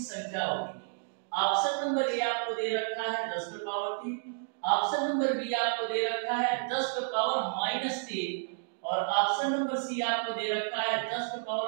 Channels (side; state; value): left; silent; digital silence